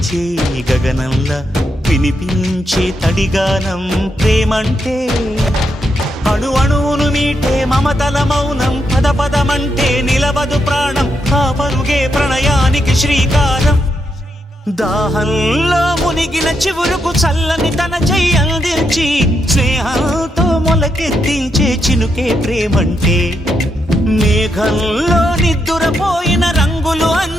గగనంలా వినిపించే తడిగానం ప్రేమంటే అణు అణువును మీటే మమతల మౌనం పద పదమంటే నిలవదు ప్రాణం ఆ పరుగే ప్రణయానికి శ్రీకారం దాహంలో మునిగిన చివురుకు చల్లని తన చెయ్యి అందించి స్నేహంతో మొలకెత్తించే చినుకే ప్రేమంటే మేఘంలో నిద్దురపోయిన రంగులు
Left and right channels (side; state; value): both; normal; correlation 0.81